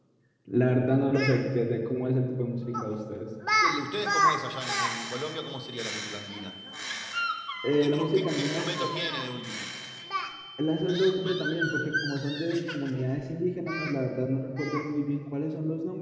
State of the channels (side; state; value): both; identical; correlation 1.00